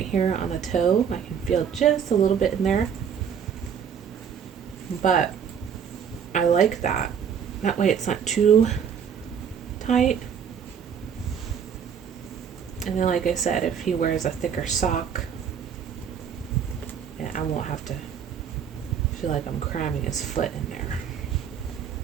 here on the toe. I can feel just a little bit in there. But I like that. That way it's not too tight. And then like I said, if he wears a thicker sock, I won't have to feel like I'm cramming his foot in there.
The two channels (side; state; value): left; quieter; 7.6 dB